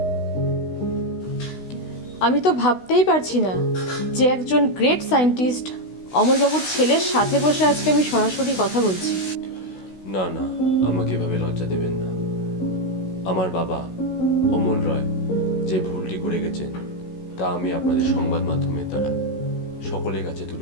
আমি তো ভাবতেই পারছি না যে একজন গ্রেট সায়েন্টিস্ট অমলবাবুর ছেলের সাথে বসে আজকে আমি সরাসরি কথা বলছি। না না, আমাকে এভাবে লজ্জা দেবেন না। আমার বাবা অমল রয় যে ভুলটি করে গেছেন তা আমি আপনাদের সংবাদ মাধ্যমের দ্বারা সকলের কাছে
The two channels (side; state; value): right; late; 16 ms